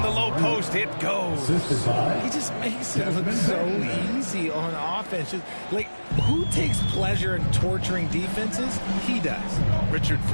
low post, it goes. He just makes it look so easy on offense. Just, like, who takes pleasure in torturing defenses? He does. Richard,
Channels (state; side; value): inverted; both; correlation -1.00